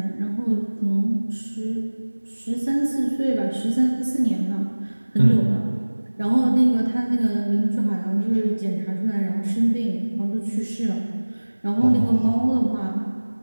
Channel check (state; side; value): inverted; both; correlation -1.00